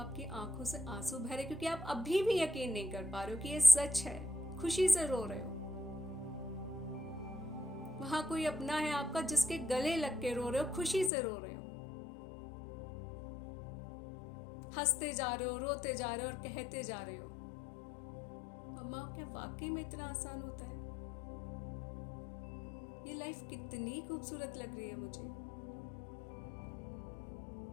आंखों से आंसू बह रहे क्योंकि आप अभी भी यकीन नहीं कर पा रहे हो कि ये सच है। खुशी से रो रहे हो। वहां कोई अपना है आपका जिसके गले लग के रो रहे हो, खुशी से रो रहे हो, हंसते जा रहे हो, रोते जा रहे हो और कहते जा रहे हो। अम्मा क्या वाकई में इतना आसान होता है? ये लाइफ कितनी खूबसूरत लग रही है मुझे।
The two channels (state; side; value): drops out; right; at 11.1 s